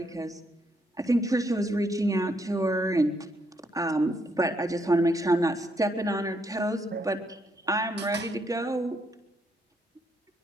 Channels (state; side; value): normal; both; correlation 0.74